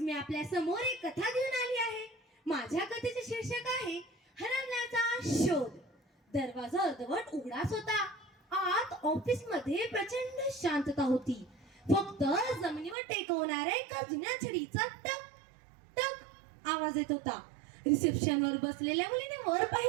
मी आपल्या समोर एक कथा घेऊन आली आहे. माझ्या कथेचे शीर्षक आहे हरवण्याचा शोध. दरवाजा अर्धवट उघडाच होता. आत ऑफिस मध्ये प्रचंड शांतता होती. फक्त जमिनीवर टेकवणाऱ्या एका जुन्या छडीचा टक टक आवाज येत होता. रिसेप्शनवर बसलेल्या मुलीने वर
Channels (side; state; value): left; drops out; at 13.0 s